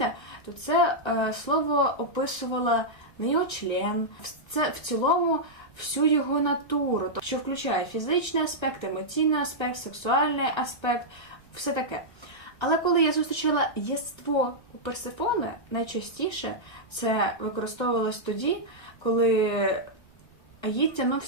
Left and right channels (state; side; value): late; right; 1.3 ms